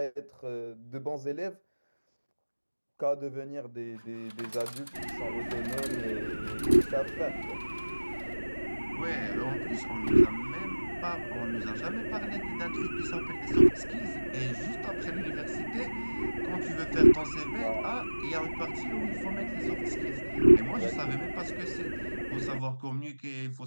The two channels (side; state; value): both; inverted; correlation -1.00